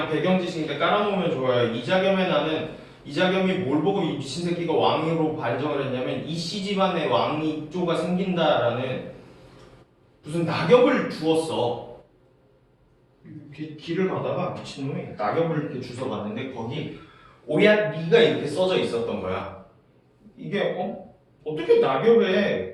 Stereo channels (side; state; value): both; identical; correlation 1.00